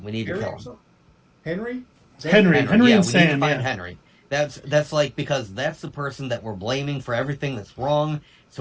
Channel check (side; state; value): both; identical; correlation 1.00